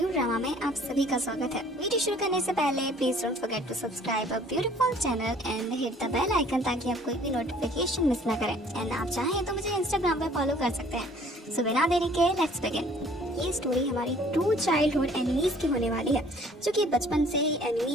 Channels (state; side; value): normal; both; correlation 0.55